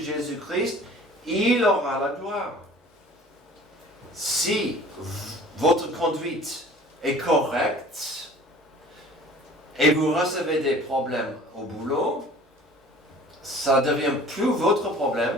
il aura la gloire. Si votre conduite est correcte et vous recevez des problèmes au boulot, ça ne devient plus votre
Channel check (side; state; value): both; normal; correlation 0.47